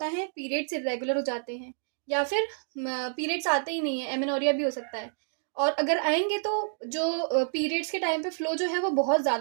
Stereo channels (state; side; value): silent; left; digital silence